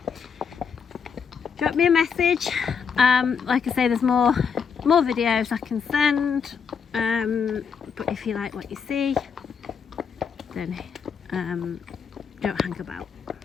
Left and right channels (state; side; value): quieter; right; 6.4 dB